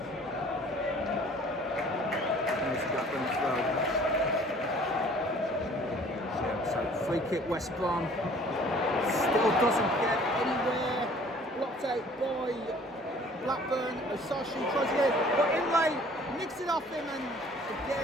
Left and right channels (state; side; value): normal; both; correlation 0.52